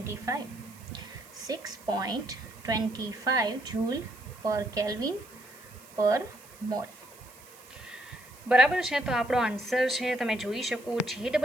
6.25 joule પર કેલ્વિન પર મોલ. બરાબર છે. તો આપણો આન્સર છે, તમે જોઈ શકો,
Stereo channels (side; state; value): right; noise; hiss, 22 dB below the sound